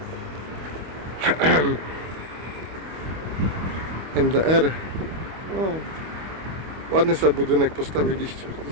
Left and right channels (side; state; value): left; late; 25 ms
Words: NDR. O, ładny sobie budynek postawiliście